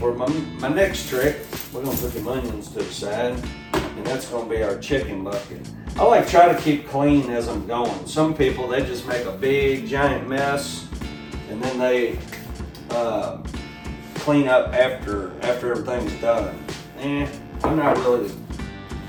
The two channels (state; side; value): identical; both; correlation 1.00